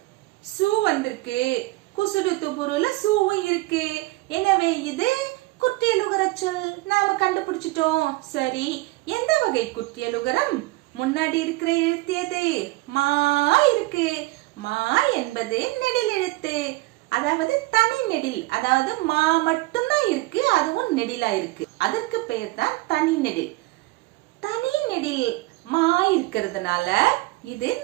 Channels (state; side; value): quieter; left; 21.2 dB